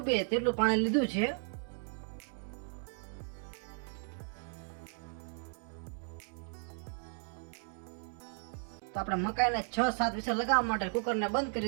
તેટલું પાણી લીધું છે। તો આપણે મકાઈને 6-7 વિસલ લગાવવા માટે કુકરને બંધ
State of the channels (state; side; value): silent; left; 54 dB below the other